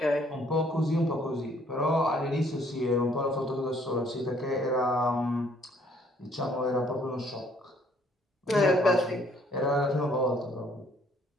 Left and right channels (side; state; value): both; normal; correlation 0.63